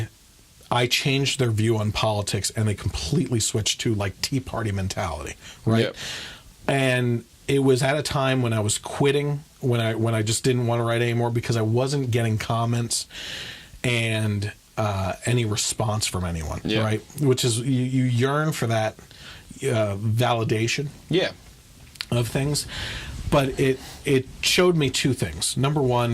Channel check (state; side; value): identical; both; correlation 1.00